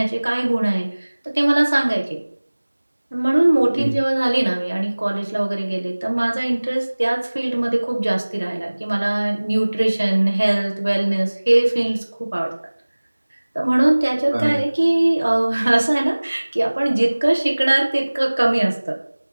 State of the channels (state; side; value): inverted; both; correlation -1.00